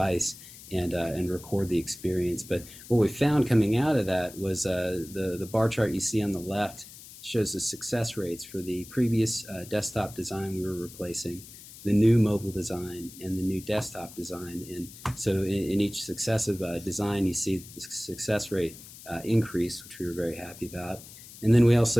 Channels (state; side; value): noise; left; hiss, 17 dB below the sound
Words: and record the experience. But what we found coming out of that was the bar chart you see on the left shows the success rates for the previous desktop design we were replacing, the new mobile design, and the new desktop design. And so in each successive design, you see the success rate increase, which we were very happy about. And then we